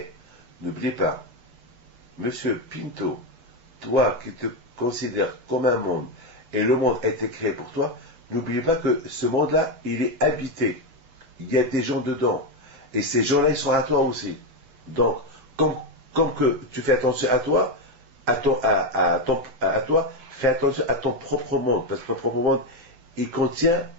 n'oubliez pas, Monsieur Pinto, toi qui te considères comme un monde, et le monde a été créé pour toi, n'oubliez pas que ce monde-là, il est habité. Il y a des gens dedans. Et ces gens-là, ils sont à toi aussi. Donc, comme que tu fais attention à toi, à toi, fais attention à ton propre monde. Parce que ton propre monde, il contient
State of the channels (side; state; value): left; late; 7.4 ms